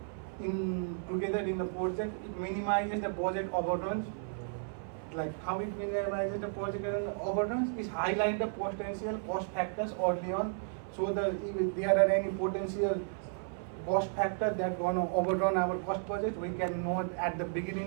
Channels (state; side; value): silent; left; 55 dB below the other